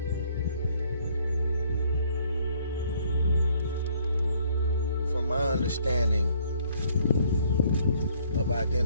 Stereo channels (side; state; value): both; inverted; correlation -0.64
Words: From my understanding of